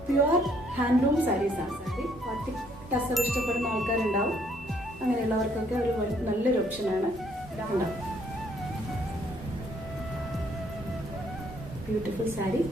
പ്യുവർ ഹാൻഡ്ലൂം സാരീസ് ആണ്. സാരി പാർട്ടി ടസർ ഇഷ്ടപ്പെടുന്ന ആൾക്കാരുണ്ടാവും. അങ്ങനെയുള്ളവർക്കൊക്കെ ഒരു നല്ലൊരു ഓപ്ഷനാണ്. ഉണ്ടാവും ബ്യൂട്ടിഫുൾ സാരി.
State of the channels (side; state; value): both; normal; correlation 0.67